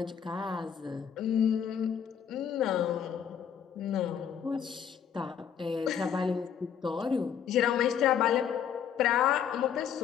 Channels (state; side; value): quieter; right; 8.3 dB